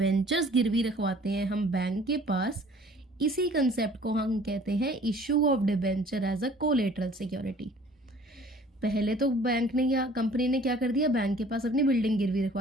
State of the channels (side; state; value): both; normal; correlation 0.52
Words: गिरवी रखवाते हैं हम बैंक के पास, इसी कंसेप्ट को हम कहते हैं issue of debenture as a collateral security. पहले तो बैंक ने या कंपनी ने क्या कर दिया, बैंक के पास अपनी बिल्डिंग गिरवी